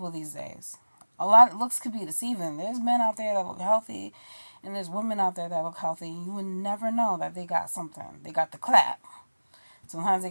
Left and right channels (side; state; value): both; inverted; correlation -1.00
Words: these days. A lot of looks could be deceiving. There's men out there that look healthy, and there's women out there that look healthy. You would never know that they got something. They got the clap. Sometimes they